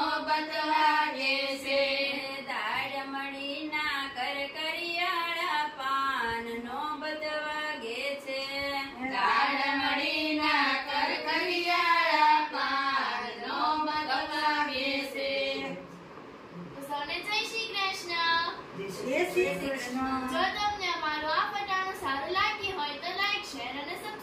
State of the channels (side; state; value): both; identical; correlation 1.00